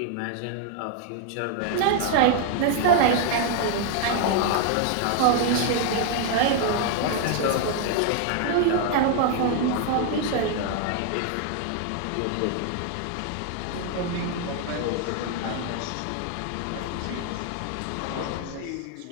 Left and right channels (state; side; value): different; both; correlation 0.00